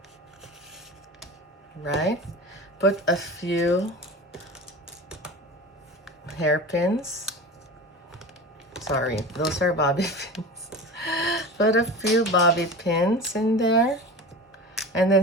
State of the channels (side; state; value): both; normal; correlation 0.32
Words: right? Put a few hairpins. Sorry, those are bobby pins. Put a few bobby pins in there. And